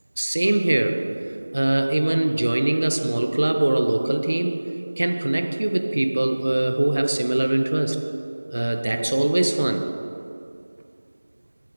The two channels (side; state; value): both; inverted; correlation -1.00